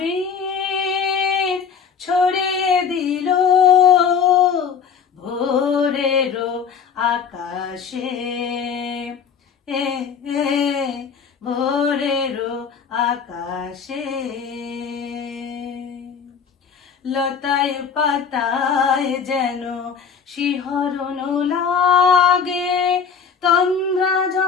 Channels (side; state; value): right; quieter; 6.6 dB